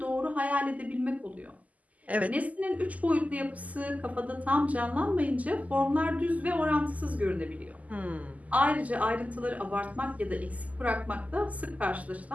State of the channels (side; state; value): left; late; 0.075 ms